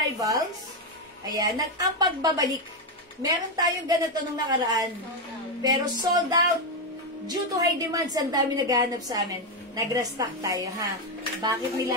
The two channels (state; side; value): normal; both; correlation 0.06